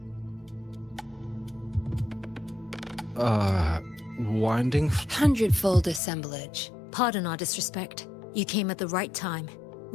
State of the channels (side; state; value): right; drops out; at 6.0 s